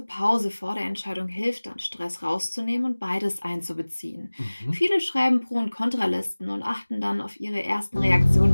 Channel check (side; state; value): both; inverted; correlation -1.00